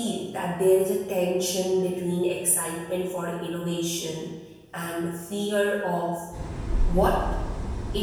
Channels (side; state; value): both; identical; correlation 1.00